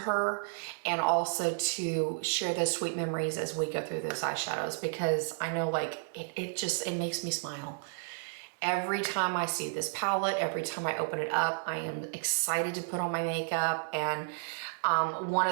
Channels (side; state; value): left; silent; digital silence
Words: and also to share those sweet memories as we go through those eyeshadows, because I know, like, it makes me smile. Every time I see this palette, every time I open it up, I am excited to put on my makeup. And one